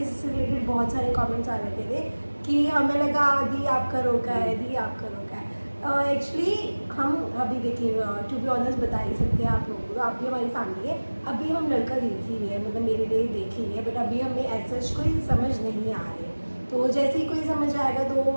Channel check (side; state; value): both; inverted; correlation -1.00